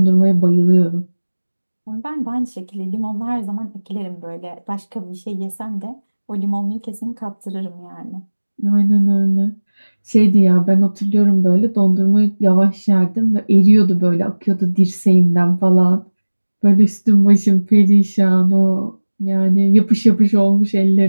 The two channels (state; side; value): inverted; both; correlation -1.00